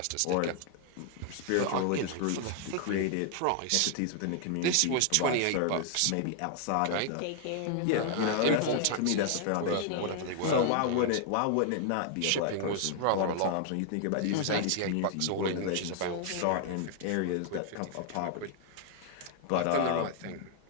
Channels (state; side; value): different; both; correlation 0.00